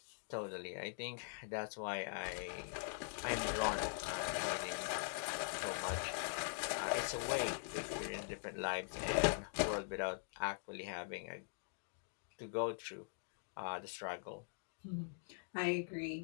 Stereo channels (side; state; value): right; silent; digital silence